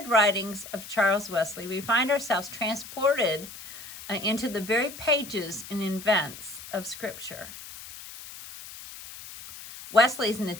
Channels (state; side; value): noise; left; hiss, 14 dB below the sound